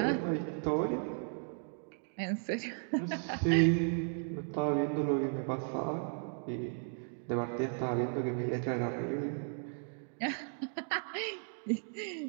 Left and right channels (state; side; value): silent; left; 54 dB below the other